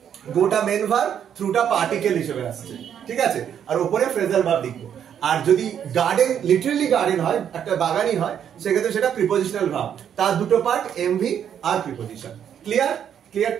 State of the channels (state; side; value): quieter; left; 8.9 dB